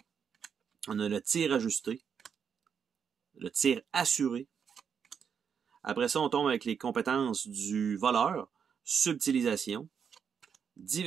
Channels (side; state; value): left; quieter; 7.0 dB